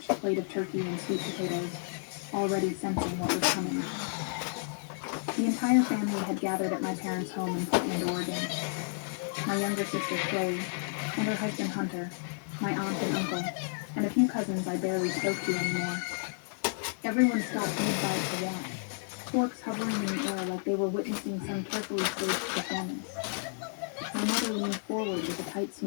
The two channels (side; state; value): right; silent; digital silence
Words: plate of turkey and sweet potatoes, already sensing what was coming. The entire family had gathered at my parents' home in Portland, Oregon. My younger sister, Chloe, and her husband, Hunter, my aunt and uncle, and a few cousins I barely spoke to anymore. Everyone stopped mid-bite to watch, forks hovering in the air like they were witnessing some carefully staged performance. My mother leaned forward with a tight